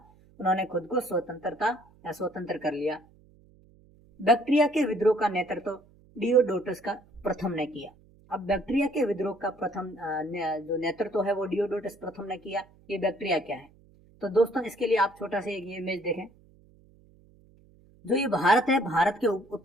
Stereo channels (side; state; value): right; noise; hum, 28 dB below the sound